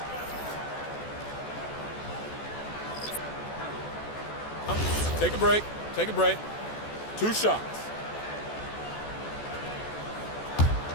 Take a break. Take a break. 2 shots.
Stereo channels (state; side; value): late; right; 14 ms